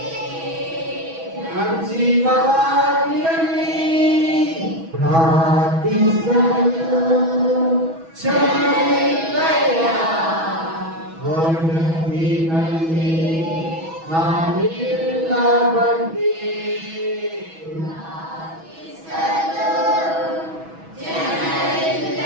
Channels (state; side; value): late; left; 6.1 ms